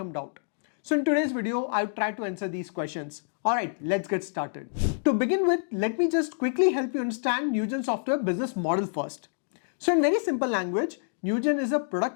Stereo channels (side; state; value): right; silent; digital silence